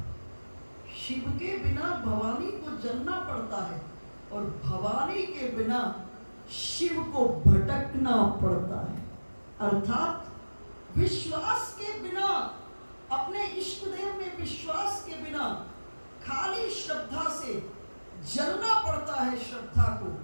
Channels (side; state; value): both; inverted; correlation -1.00